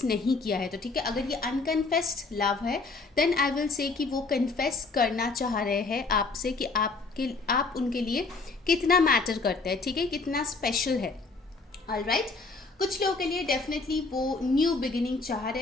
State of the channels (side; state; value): right; quieter; 3.9 dB